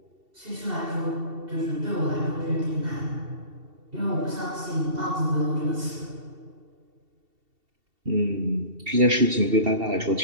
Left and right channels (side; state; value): left; late; 2.7 ms